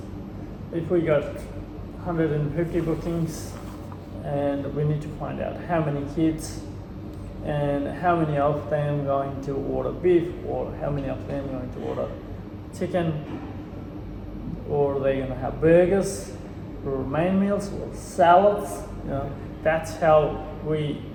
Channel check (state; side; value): identical; both; correlation 1.00